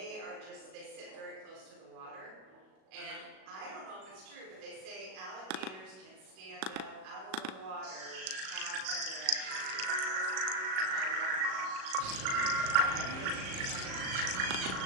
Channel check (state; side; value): late; left; 37 ms